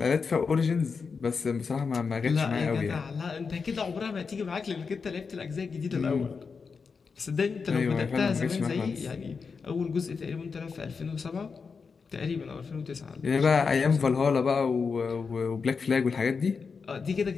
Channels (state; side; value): quieter; right; 5.2 dB